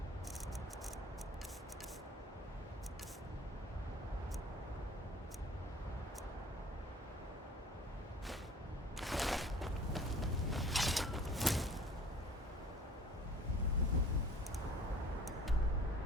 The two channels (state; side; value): normal; both; correlation 0.49